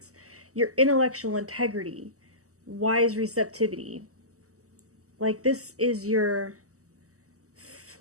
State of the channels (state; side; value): late; left; 0.66 ms